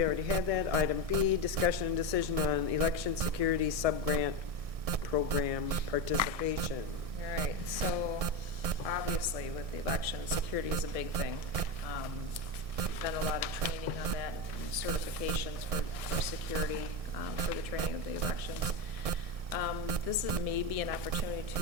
already had that. Item B, discussion and decision on election security sub-grant program participation. All right, so obviously with the election, security is a big thing. Done a lot of training on that, and certifications for security, for the training of the elections. This is maybe an opportunity to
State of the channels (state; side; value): late; left; 1.6 ms